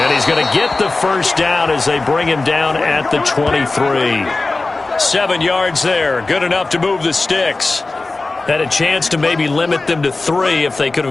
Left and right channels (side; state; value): right; quieter; 3.4 dB